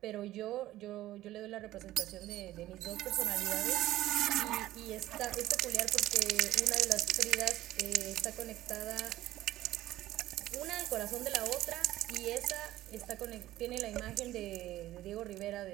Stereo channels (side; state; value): left; quieter; 15.2 dB